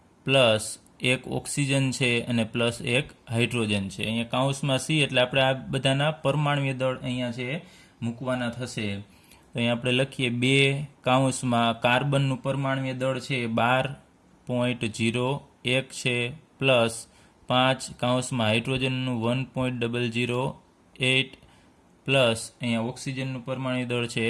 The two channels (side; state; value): both; identical; correlation 1.00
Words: પ્લસ 1 ઓક્સિજન છે અને પ્લસ 1 હાઇડ્રોજન છે. અહીંયા કૌંસમાં C એટલે આપણે આ બધાના પરમાણુય દળ અહીંયા છે મૂકવાના થશે. તો અહીંયા આપણે લખીએ 2 કૌંસમાં કાર્બનનું પરમાણુય દળ છે 12.01 છે પ્લસ 5 કૌંસમાં હાઇડ્રોજનનું 1.008 પ્લસ અહીંયા ઓક્સિજનનું પરમાણુય દળ છે